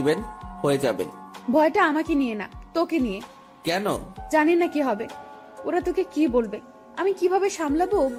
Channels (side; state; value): both; identical; correlation 1.00